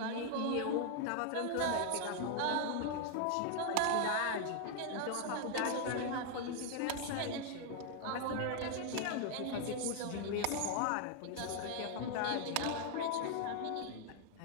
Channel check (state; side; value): different; both; correlation 0.00